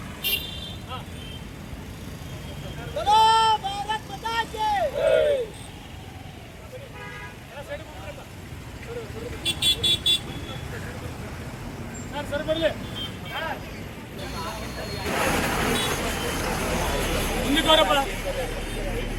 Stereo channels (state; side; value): identical; both; correlation 1.00